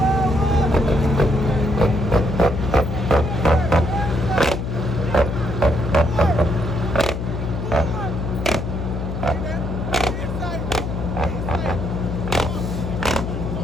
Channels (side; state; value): left; noise; hum, 4 dB below the sound